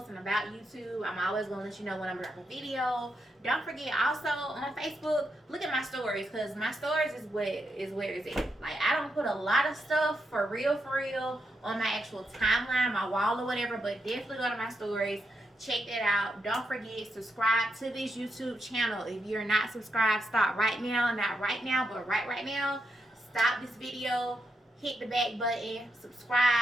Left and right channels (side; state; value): both; normal; correlation 0.83